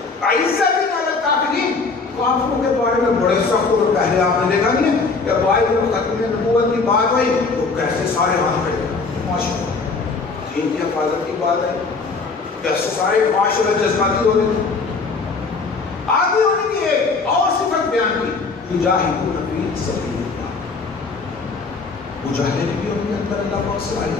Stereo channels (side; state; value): right; quieter; 4.3 dB